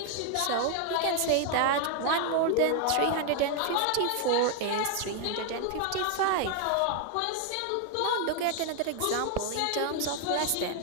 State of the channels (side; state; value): both; different; correlation 0.01